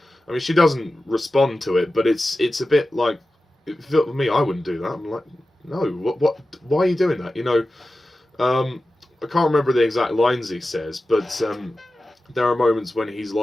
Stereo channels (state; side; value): normal; both; correlation 0.94